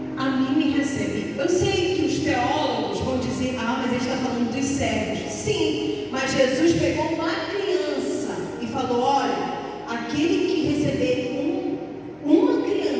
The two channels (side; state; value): both; identical; correlation 1.00